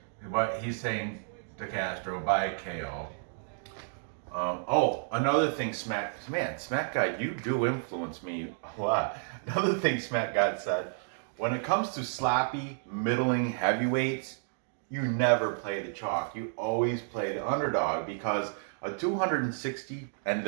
But he's saying DeCastro by KO. Another thing, Smack Guy, you do influence me a lot. Another thing Smack God said, when it comes to sloppy, middling heavyweights, you never play the chalk. You always play the underdog because a 260, and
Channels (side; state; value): left; silent; digital silence